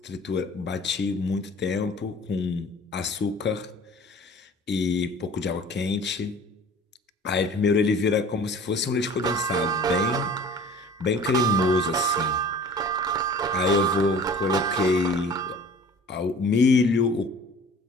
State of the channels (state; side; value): normal; both; correlation 0.45